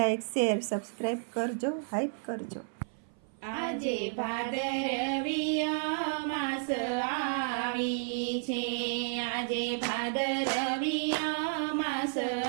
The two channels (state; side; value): silent; left; 56 dB below the other